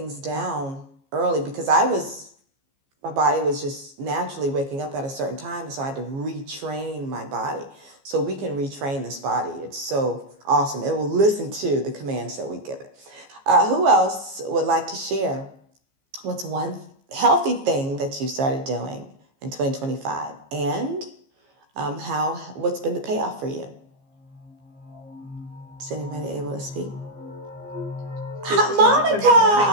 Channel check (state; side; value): late; left; 15 ms